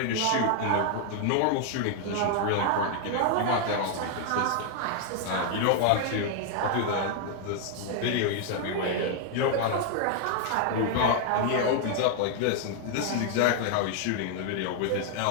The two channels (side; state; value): both; different; correlation 0.00